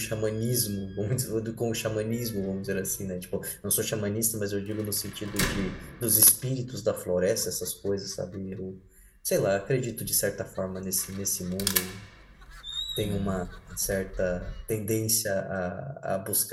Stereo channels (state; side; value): identical; both; correlation 1.00